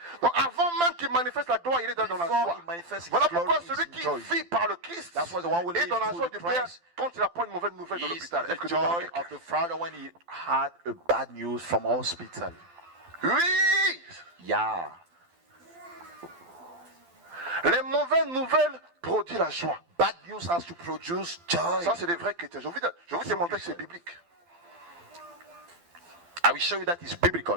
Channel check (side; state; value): left; late; 12 ms